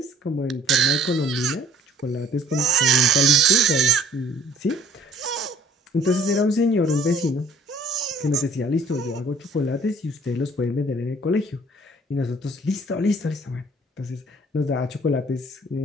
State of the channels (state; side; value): normal; both; correlation 0.55